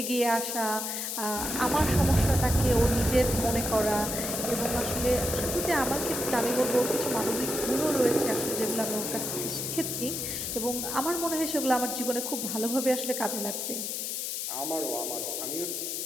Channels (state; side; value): noise; left; hiss, 3 dB below the sound